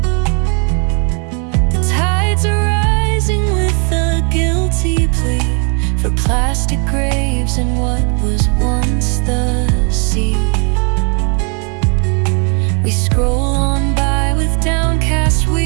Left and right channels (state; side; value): quieter; left; 37.3 dB